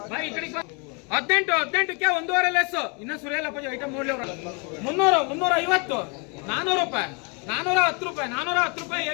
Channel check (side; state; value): right; quieter; 33.8 dB